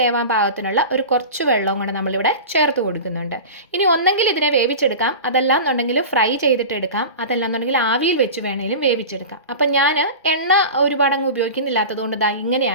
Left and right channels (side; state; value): both; inverted; correlation -0.31